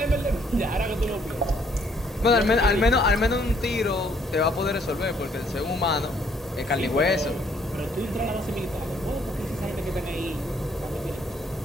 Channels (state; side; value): normal; both; correlation 0.65